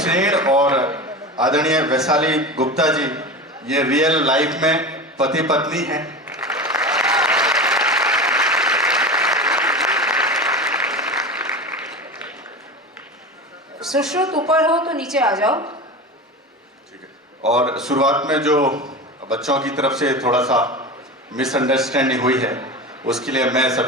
और आदरणीय वैशाली गुप्ता जी ये रियल लाइफ में पति पत्नी हैं। सुश्रुत ऊपर हो तो नीचे आ जाओ। ठीक है। और शुरुआत में जो बच्चों की तरफ से थोड़ा सा मिसअंडरस्टैंडिंग हुई है उसके लिए मैं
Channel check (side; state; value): both; normal; correlation 0.28